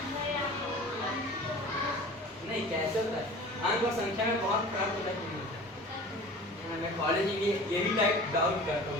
नहीं, कैसे होता है? अंक और संख्या में बहुत फर्क होता है। मैं मैं कॉलेज में यही टाइप डाउट करता हूँ।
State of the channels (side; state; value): both; normal; correlation 0.41